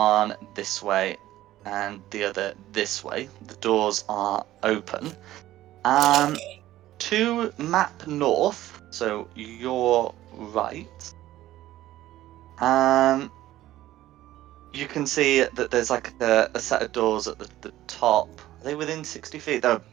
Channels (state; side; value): quieter; left; 14.7 dB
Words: this way and the other this way. The doors are open. To map north, so your right. You can see that there's like a set of doors at the top. Are they within 60 feet? They're